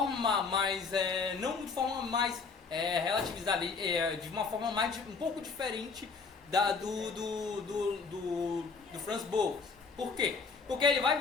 mais, não de forma mais relativizada, de uma forma mais um pouco diferente do Franz Boas. Por quê? Porque ele vai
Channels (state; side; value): quieter; right; 4.9 dB